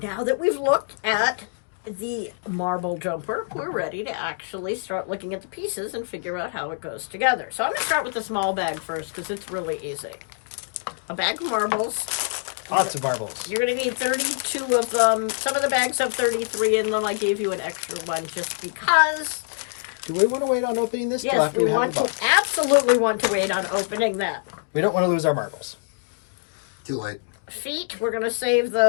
that we've looked at the marble jumper, we're ready to actually start looking at the pieces and figure out how it goes together. So I'm going to start with the small bag first because it's really easy. A bag of marbles. Lots of marbles. You're going to need 32 of them. Some of the bags have 33 in them. I gave you an extra one just because. Do we want to wait on opening this? Yes, we want to absolutely want to wait on opening that. We don't want to lose our marbles. Too late. Feet, we're going to save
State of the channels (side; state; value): right; silent; digital silence